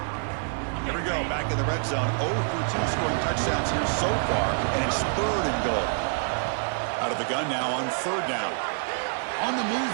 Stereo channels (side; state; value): left; silent; 60 dB below the other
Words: Here we go, back in the red zone. 0 for 2 scoring touchdowns here so far, and it's 3rd and goal. Out of the gun now on 3rd down. On the move